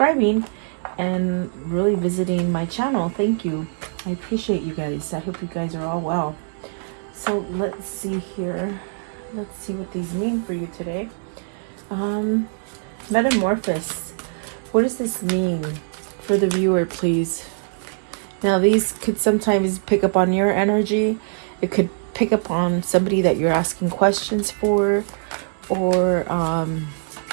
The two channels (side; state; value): left; silent; digital silence